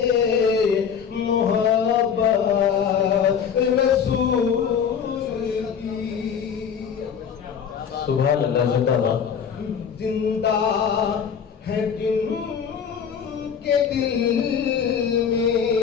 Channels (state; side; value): quieter; right; 7.3 dB